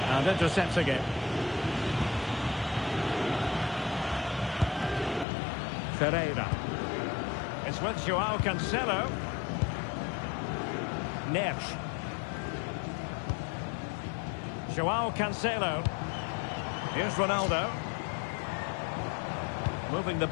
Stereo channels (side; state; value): right; drops out; at 5.2 s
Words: And intercepts again. Ferreira. It's with João Cancelo. Neves. João Cancelo. Here's Ronaldo. Moving the